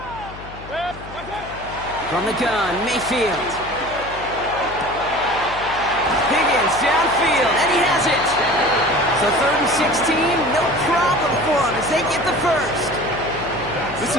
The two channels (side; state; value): left; noise; hum, 16 dB below the sound